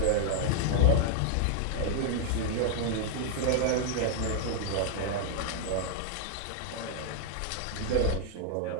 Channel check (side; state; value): both; different; correlation -0.01